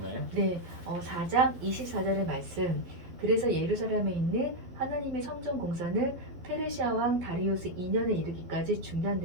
네, 4장 24절의 말씀. 그래서 예루살렘에 있는 하나님의 성전 공사는 페르시아 왕 다리우스 2년에 이르기까지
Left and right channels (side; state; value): left; late; 12 ms